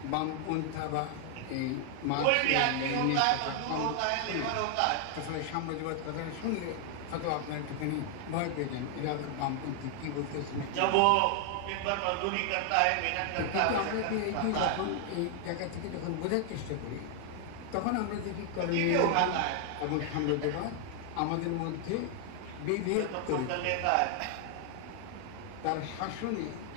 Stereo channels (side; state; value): both; different; correlation 0.00